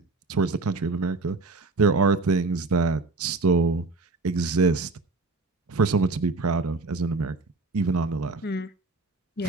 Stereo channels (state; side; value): quieter; left; 3.6 dB